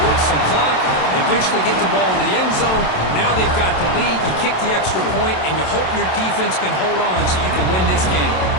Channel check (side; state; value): right; late; 27 ms